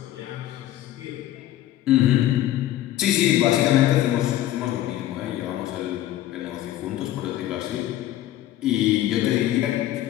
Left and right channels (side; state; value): right; quieter; 13.6 dB